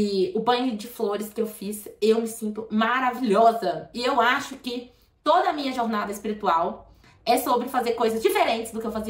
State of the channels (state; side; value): identical; both; correlation 1.00